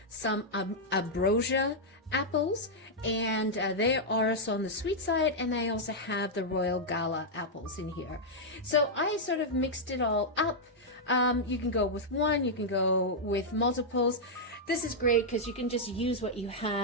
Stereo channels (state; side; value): normal; both; correlation -0.05